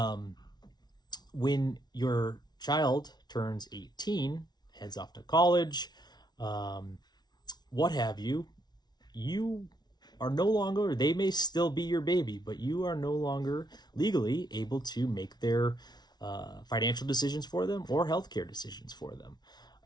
When your child turns 18, heads off to college, what have you, you are no longer, they may still be your baby, but you are no longer legally able to make their financial decisions for them or healthcare decisions for them.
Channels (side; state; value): right; late; 0.20 ms